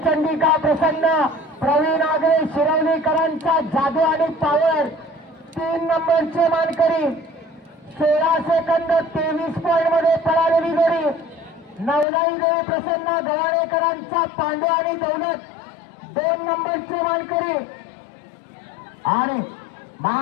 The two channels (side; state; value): right; drops out; at 12.1 s